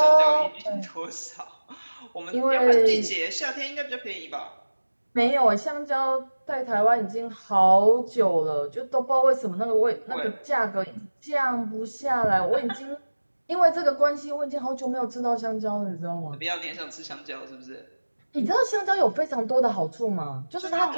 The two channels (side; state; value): both; inverted; correlation -1.00